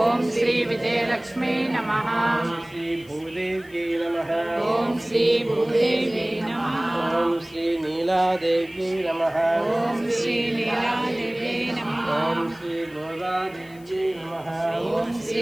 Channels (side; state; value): left; noise; hiss, 26 dB below the sound